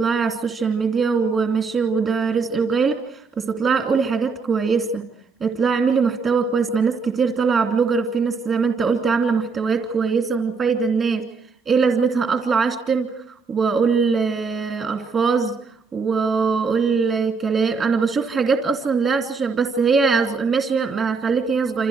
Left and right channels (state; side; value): quieter; left; 4.9 dB